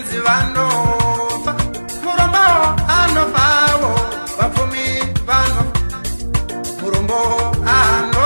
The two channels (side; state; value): both; inverted; correlation -1.00